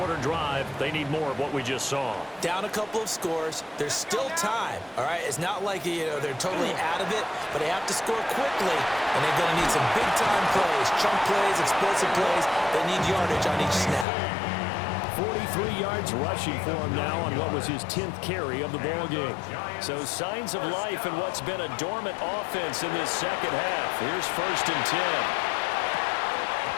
drive. They need more of what we just saw. Down a couple of scores. There's still time, all right? It's not like, they're totally out of it, but they have to score quickly, and they're going to need some big-time plays, chunk plays, explosive plays. They need yardage on each snap. 43 yards rushing for him now on what was his 10th carry of the ballgame. So signs of life in what's been a dormant offense in this second half. Here's 1st and 10.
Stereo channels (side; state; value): right; drops out; at 14.1 s